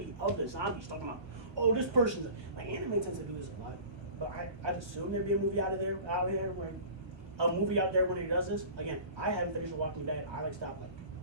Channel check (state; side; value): late; left; 1.5 ms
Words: of the zombies. Talking about, oh, this person's like anime tends to do this a lot, but I'd assume there'd be a movie out there where a movie out there when it does this. Again, I haven't finished The Walking Dead. I stopped